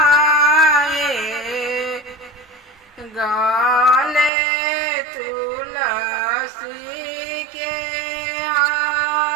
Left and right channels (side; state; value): left; drops out; at 4.3 s